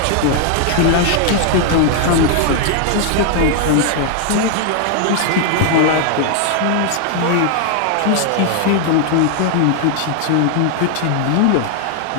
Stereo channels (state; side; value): different; both; correlation 0.00